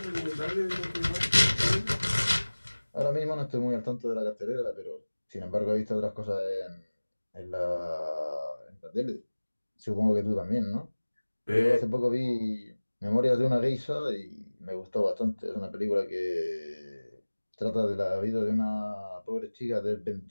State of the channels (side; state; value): both; inverted; correlation -1.00